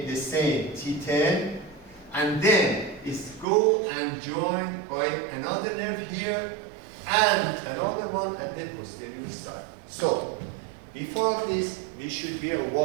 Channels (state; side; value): drops out; left; at 3.5 s